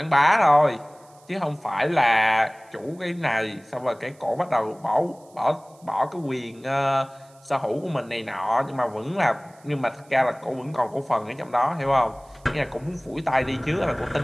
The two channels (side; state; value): right; noise; hiss, 29 dB below the sound